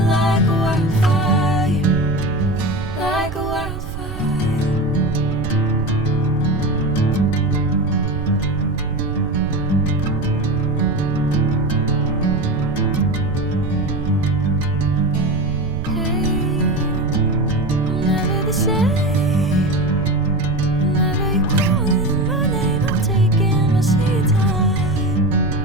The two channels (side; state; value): right; noise; rumble, 9 dB below the sound